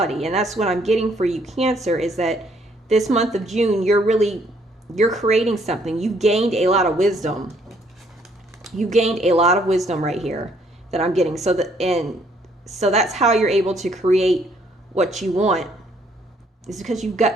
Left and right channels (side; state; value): both; normal; correlation 0.66